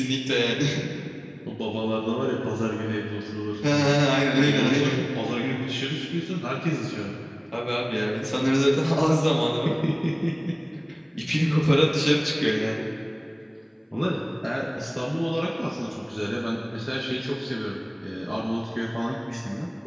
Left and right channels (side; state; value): both; identical; correlation 1.00